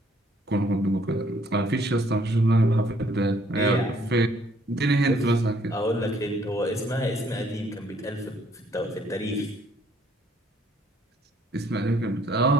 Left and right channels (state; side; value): normal; both; correlation 0.64